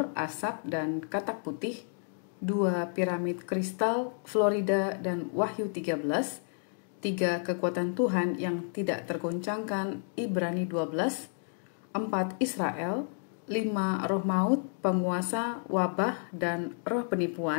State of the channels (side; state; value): right; silent; 57 dB below the other